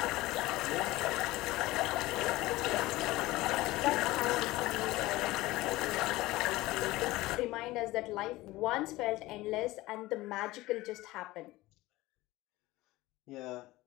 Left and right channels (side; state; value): right; quieter; 18.8 dB